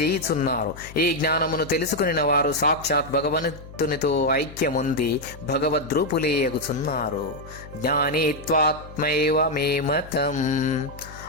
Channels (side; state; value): left; noise; hum, 16 dB below the sound